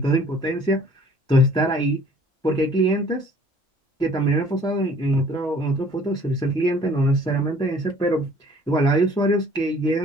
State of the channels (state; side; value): normal; both; correlation 0.54